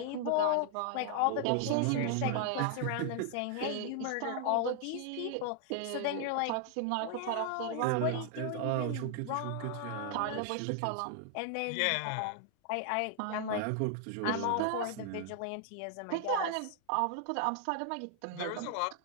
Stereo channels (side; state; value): both; different; correlation 0.00